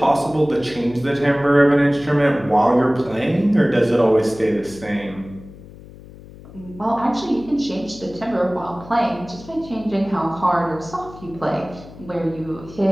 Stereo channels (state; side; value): noise; left; hum, 18 dB below the sound